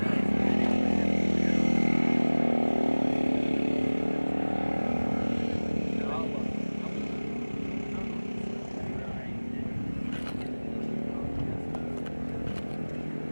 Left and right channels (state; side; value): inverted; both; correlation -1.00